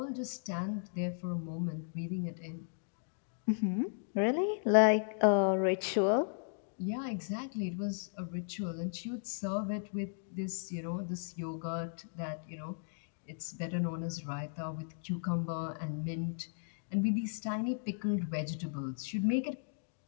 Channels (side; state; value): right; silent; digital silence